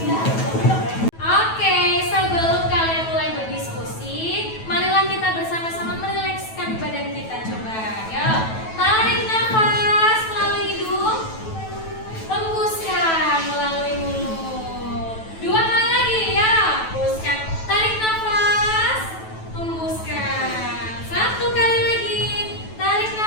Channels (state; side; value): late; right; 9.2 ms